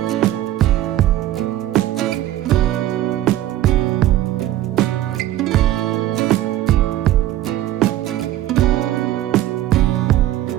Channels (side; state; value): left; quieter; 13.9 dB